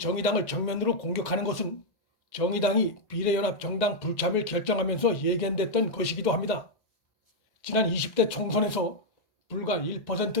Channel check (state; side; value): late; right; 1.9 ms